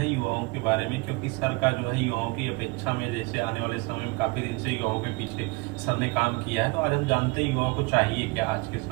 युवाओं के बारे में, क्योंकि सर का जो है युवाओं की अपेक्षा में, जैसे आने वाले समय में काफी दिन से युवाओं के पीछे सर ने काम किया है, तो आज हम जानते हैं युवाओं को चाहिए क्या आज के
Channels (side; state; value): left; quieter; 26.4 dB